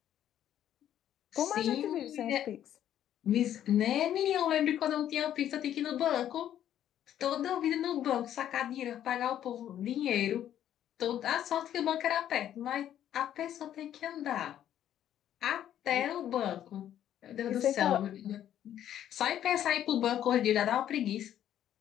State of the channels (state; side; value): quieter; right; 10.9 dB